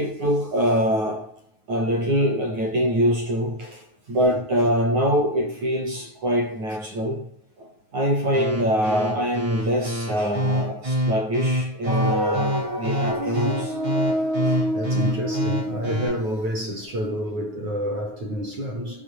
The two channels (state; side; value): late; left; 9.4 ms